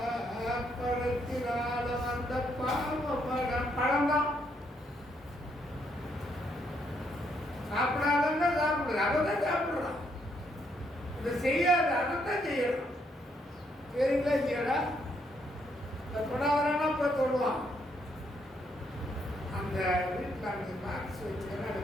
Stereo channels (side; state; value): both; normal; correlation 0.74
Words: பழத்தினால வந்த பாவமடா. பழம்தான் சாப்பிடாதன்னா சாப்பிடுறது. அவதான் சாப்பிடுறான். இதை செய்யாத அதைத்தான் செய்யணும். சரிங்களா இல்லையாடா? தொடாதானா போய் தொடுவான். அந்த வீட்டில் அந்த பாக்ஸ் வச்சுக்கிறேன். அதை